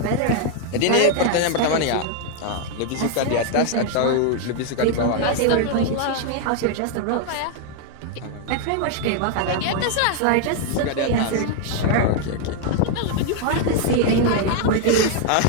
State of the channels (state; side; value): different; both; correlation 0.00